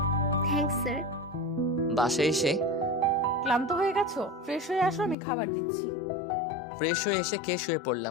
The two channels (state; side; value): drops out; right; at 5.2 s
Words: Thanks sir. বাসায় এসে ক্লান্ত হয়ে গেছো? ফ্রেশ হয়ে আসো, আমি খাবার দিচ্ছি। ফ্রেশ হয়ে এসে খেয়ে শুয়ে